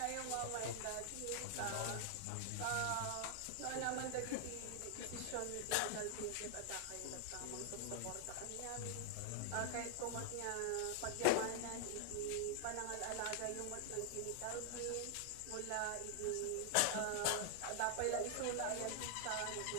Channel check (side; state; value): both; different; correlation 0.00